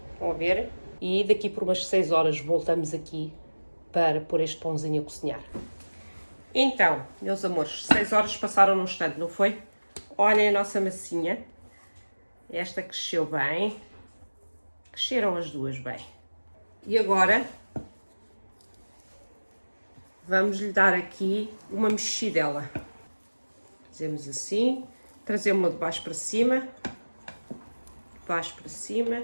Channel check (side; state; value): both; inverted; correlation -1.00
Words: vão ver, e daqui por umas 6 horas voltamos aqui para pôr este pãozinho a cozinhar. Então, meus amores, 6 horas passaram num instante, não foi? Olhem a nossa massinha, esta cresceu bem. Cresceram as duas bem. E agora vamos lhe dar aqui uma mexidela. Fazemos assim, trazemos-la de baixo para cima,